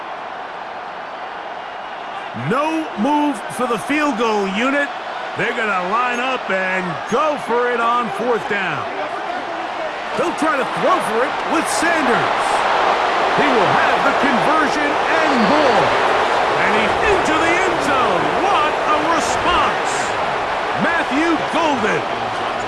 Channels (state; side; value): identical; both; correlation 1.00